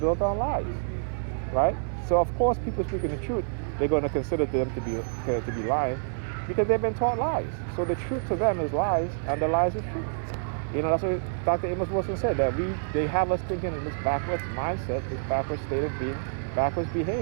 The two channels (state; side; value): silent; left; digital silence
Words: on lies. Right? So of course people speaking the truth, they're going to consider them to be lying because they've been taught lies. So the truth to them is lies and the lies is truth. That's what Dr. Amos Wilson said, that they have us thinking in this backwards mindset, this backwards state of being, backwards